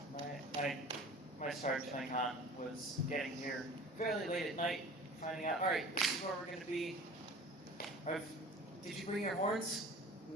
My start to con was getting here fairly late at night, finding out, all right, this is where we're going to be. Did you bring your horns?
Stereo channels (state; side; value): normal; both; correlation 0.42